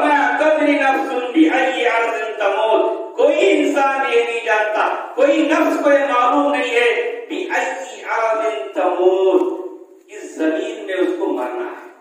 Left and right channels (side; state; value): both; identical; correlation 1.00